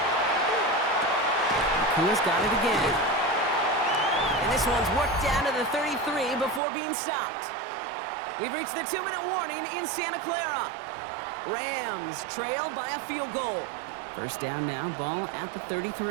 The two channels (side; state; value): left; drops out; at 6.6 s